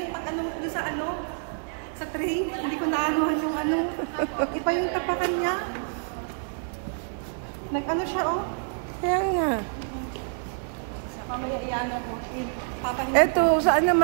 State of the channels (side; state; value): left; silent; 60 dB below the other